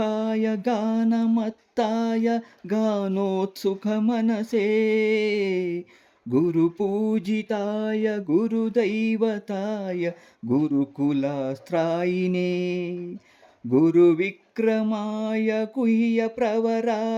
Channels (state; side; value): identical; both; correlation 1.00